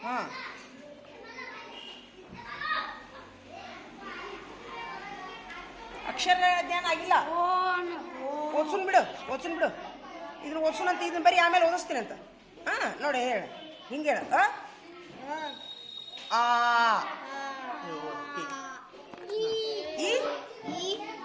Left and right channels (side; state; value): both; identical; correlation 1.00